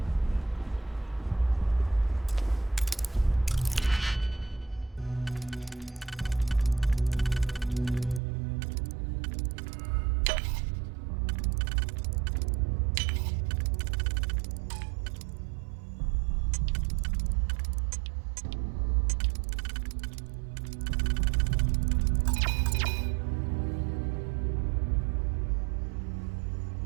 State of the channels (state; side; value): drops out; left; at 8.2 s